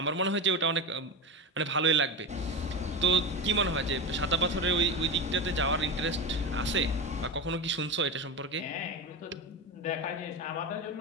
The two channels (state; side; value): normal; both; correlation 0.20